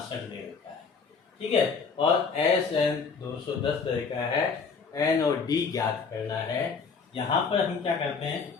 दे रखा है। ठीक है, और Sn 210 दे रखा है, n और d ज्ञात करना है। यहाँ पर हम क्या करते हैं,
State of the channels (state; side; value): quieter; right; 5.2 dB